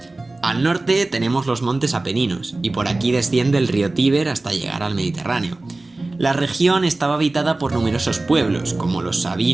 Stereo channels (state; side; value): quieter; left; 3.0 dB